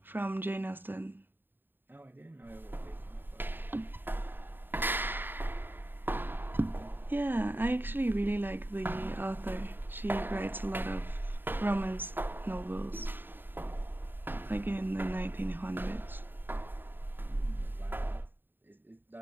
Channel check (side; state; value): left; late; 0.095 ms